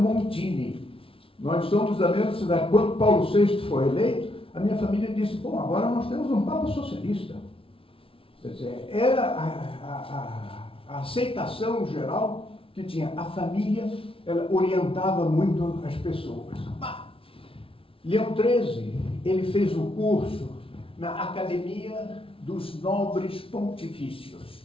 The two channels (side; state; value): right; late; 0.26 ms